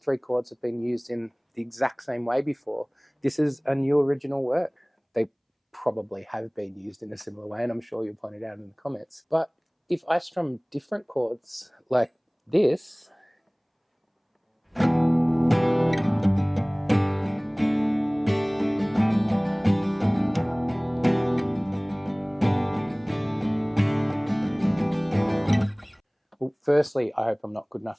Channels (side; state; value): both; identical; correlation 1.00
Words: chords have been used in the exact same way before, this is a new original work. They probably have been used in a similar way, and I'm sure you'll point it out in the comments. But if I strum different chords like this, well, firstly, I hope I'm not good enough